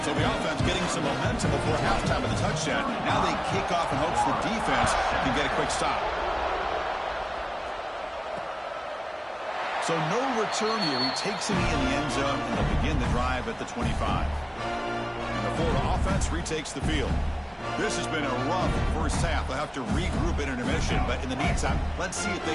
So the offense getting some momentum before halftime of the touchdown. Now they kick off in hopes the defense can get a quick stop. So no return here. He takes it in the end zone, and they'll begin the drive at the 25. And the Florida offense retakes the field. This has been a rough first half. They'll have to regroup in intermission, but in the meantime, let's see if they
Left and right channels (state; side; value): identical; both; correlation 1.00